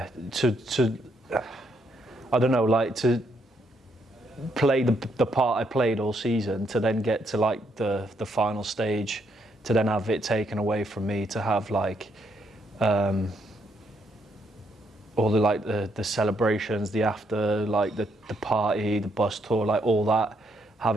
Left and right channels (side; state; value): both; normal; correlation 0.74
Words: I don't know, to play the part I played all season, to then get to the final stage, to then have it taken away from me, to have all the celebrations, the after, the party, the bus tour, all that,